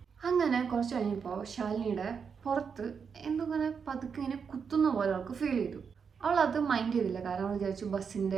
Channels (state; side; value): quieter; left; 6.3 dB